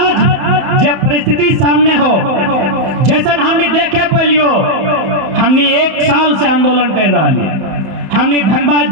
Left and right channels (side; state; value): left; late; 31 ms